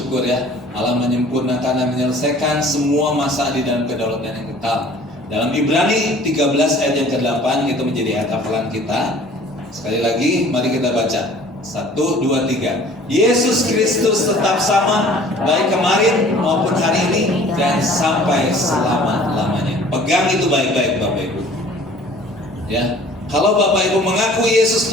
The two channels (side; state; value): both; normal; correlation 0.50